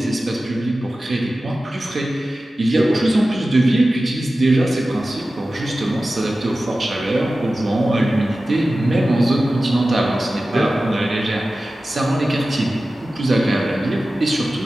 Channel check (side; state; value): both; normal; correlation 0.95